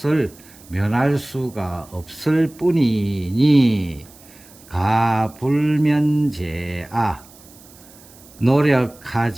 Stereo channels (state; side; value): noise; right; hiss, 24 dB below the sound